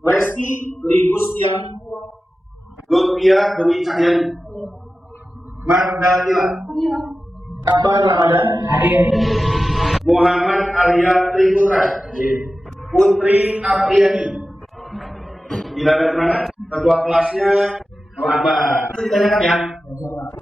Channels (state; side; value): normal; both; correlation 0.94